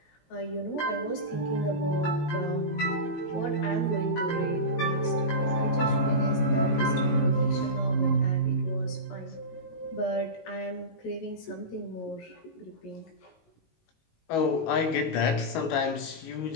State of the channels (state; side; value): late; right; 19 ms